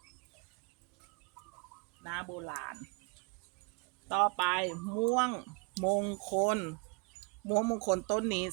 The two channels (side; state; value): left; quieter; 31.9 dB